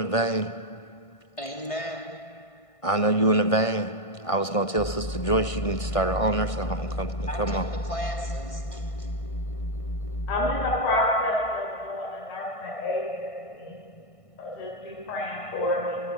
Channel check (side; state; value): right; late; 1.5 ms